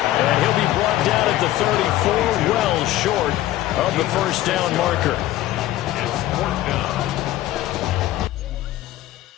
And he'll be brought down at the 34, well short of the first down marker.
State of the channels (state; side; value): quieter; right; 14.7 dB